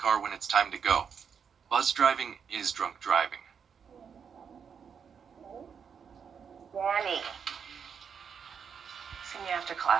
when it's time to go. Buzz driving is drunk driving. Danny. See me after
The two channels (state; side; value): quieter; left; 6.9 dB